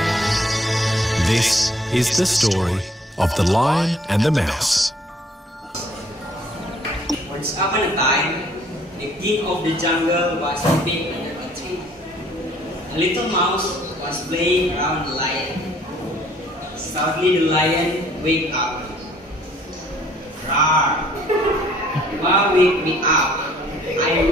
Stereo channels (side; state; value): both; normal; correlation 0.60